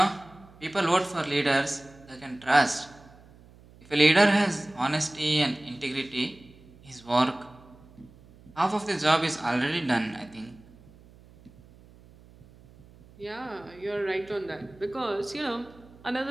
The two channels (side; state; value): right; noise; hum, 24 dB below the sound